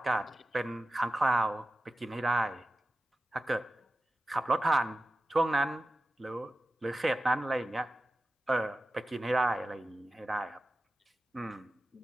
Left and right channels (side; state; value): both; normal; correlation 0.94